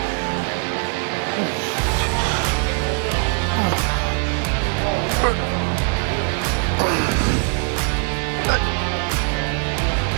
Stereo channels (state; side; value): quieter; left; 40.0 dB